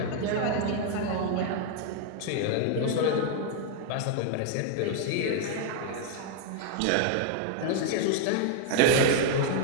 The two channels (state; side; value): different; both; correlation 0.00